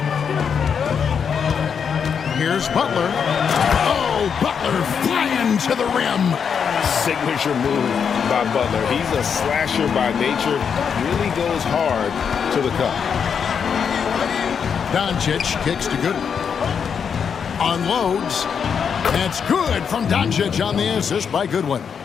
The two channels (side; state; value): right; quieter; 6.9 dB